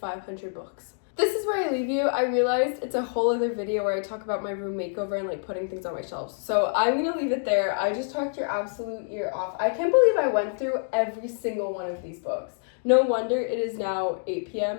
books. This is where I leave you. I realized it's a whole other video where I talk about my room makeover and like putting things on my shelves. So I'm gonna leave it there. I just talked your absolute ear off. I can't believe I went through every single one of these books. No wonder it is now 8 p.m.,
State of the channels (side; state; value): right; silent; digital silence